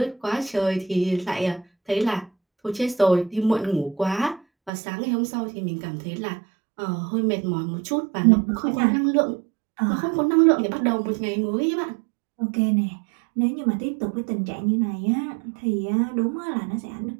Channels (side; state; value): left; drops out; at 4.7 s